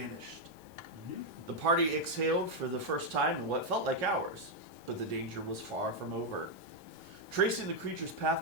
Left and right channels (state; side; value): noise; left; hiss, 27 dB below the sound